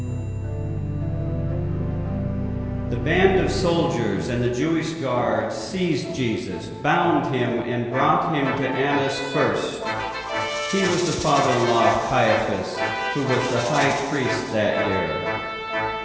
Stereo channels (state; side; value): identical; both; correlation 1.00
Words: The band of soldiers and the Jewish guards seized Jesus, bound him, and brought him to Annas first. He was the father-in-law of Caiaphas, who was the high priest that year.